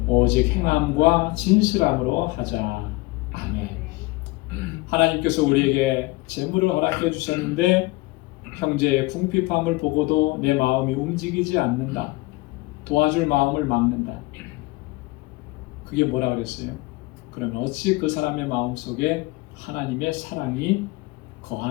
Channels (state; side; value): quieter; right; 22.0 dB